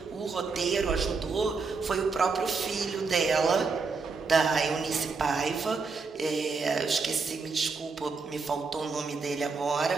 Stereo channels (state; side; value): quieter; left; 4.6 dB